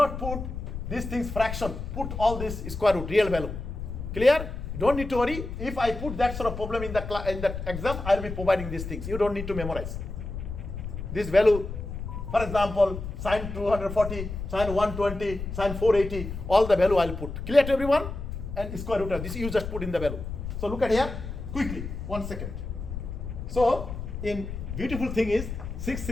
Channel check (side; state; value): left; noise; rumble, 7 dB below the sound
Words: put these things fraction. Put all this square root, real value. Clear? You don't need to worry. If I put that sort of problem in the exam, I will be providing these things. You don't need to memorize. This value, for example, sine 240, sine 120, sine 480, all the value I will put. Clear to everyone? And square root of this, you just put in the value. So look at here, quickly, 1 second. So, in beautiful thing is